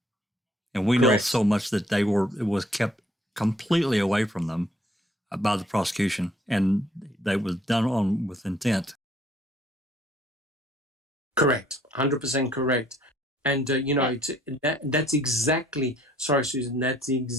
And we know so much that it was kept completely away from them by the prosecution, and they was done with intent. Correct, 100% correct. And, that's exactly, sorry, Susan, that's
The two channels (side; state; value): both; normal; correlation 0.62